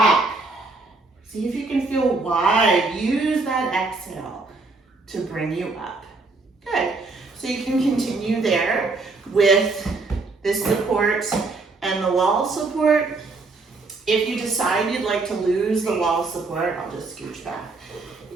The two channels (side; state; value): left; quieter; 3.7 dB